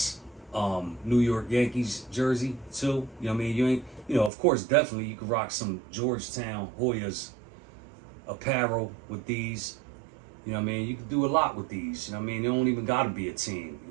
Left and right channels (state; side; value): drops out; left; at 4.3 s